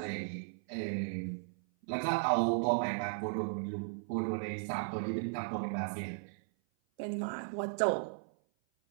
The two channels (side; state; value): left; silent; 54 dB below the other